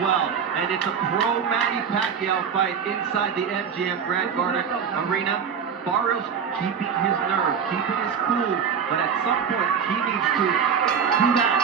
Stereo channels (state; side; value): quieter; left; 7.0 dB